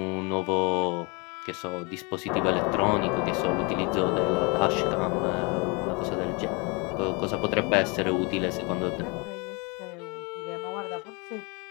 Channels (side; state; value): right; quieter; 30.0 dB